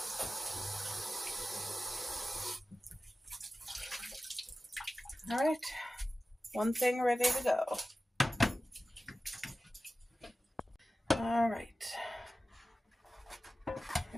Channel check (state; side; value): normal; both; correlation 0.95